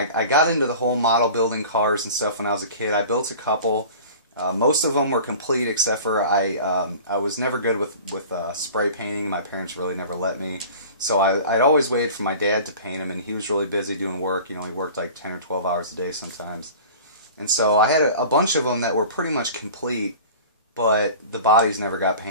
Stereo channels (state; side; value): inverted; both; correlation -0.41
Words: got into the whole model building cars and stuff when I was a kid. I built a couple. Most of them were complete, except for I was never good with spray painting. My parents really never let me. So I'd always waited for my dad to paint them, and he was really busy doing work. You know, he worked like 10 or 12 hours a day sometimes. And so I had a bunch of them that were pretty much complete, but the bodies never got